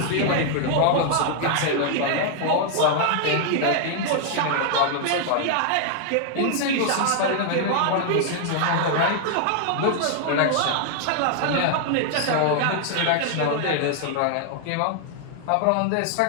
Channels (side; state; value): both; different; correlation 0.00